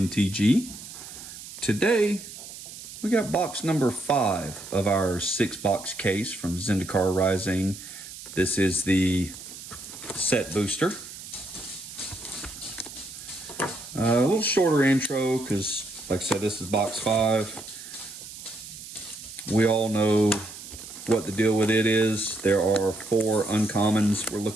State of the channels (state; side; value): noise; right; hiss, 13 dB below the sound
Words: Today, we got box number 5 of our 6-box case from Zendikar Rising. This is the set booster. A little shorter intro because, like I said, this is box 5. We all know what the deal with it is. There are 4 uncommons we're